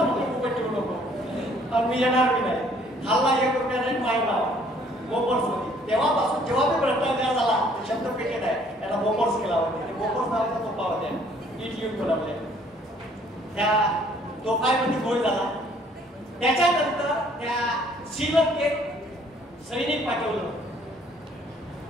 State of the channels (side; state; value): both; normal; correlation 0.60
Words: मी येणार नाही. खाल्ला 1 रुपया नाही माहिती बोफोर्स मध्ये. तेव्हापासून जेव्हा मी भ्रष्टाचार झाला शब्द पेटेड आहे त्याला बोफोर्स केला होता. बोफोर्स नावाचा तोफा होत्या. इट युद्ध बनवले. त्या तोफामध्ये गोळ झाला. त्याच्यानंतर त्या श्रीलंकेत सैनिक पाठवलं.